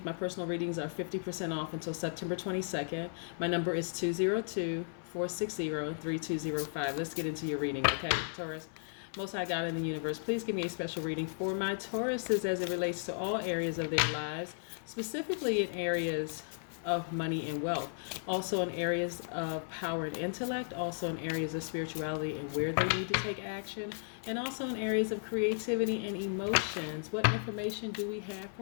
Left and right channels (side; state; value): right; silent; 55 dB below the other